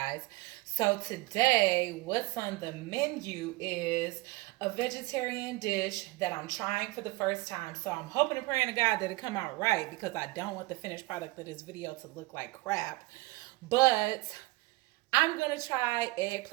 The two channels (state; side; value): quieter; left; 22.1 dB